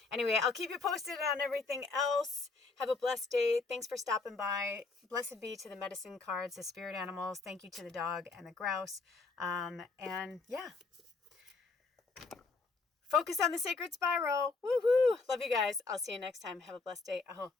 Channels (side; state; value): right; quieter; 4.0 dB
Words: anyway, I'll keep you posted on everything else. Have a blessed day. Thanks for stopping by. Blessed be to the medicine cards, the spirit animals. Thank you to the dog and the grouse. And yeah. Focus on the sacred spiral. Woohoo! Love you guys. I'll see you next time. Have a blessed day. Aho.